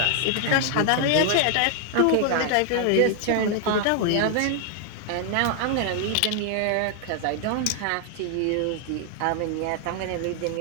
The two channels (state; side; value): different; both; correlation 0.00